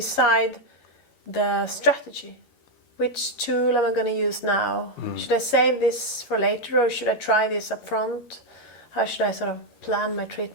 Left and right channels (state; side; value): late; right; 13 ms